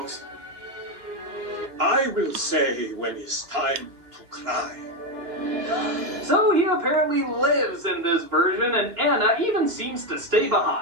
I will say when it's time to cry. So he apparently lives in this version, and Anna even seems to stay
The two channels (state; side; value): late; left; 3.0 ms